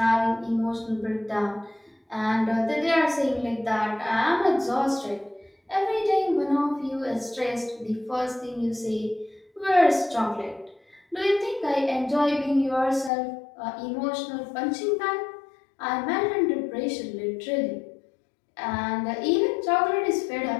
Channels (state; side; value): drops out; right; at 13.1 s